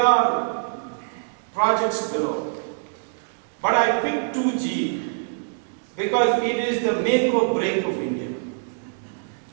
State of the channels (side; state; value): left; silent; 62 dB below the other